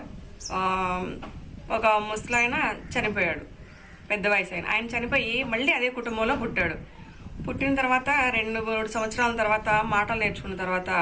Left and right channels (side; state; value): both; identical; correlation 1.00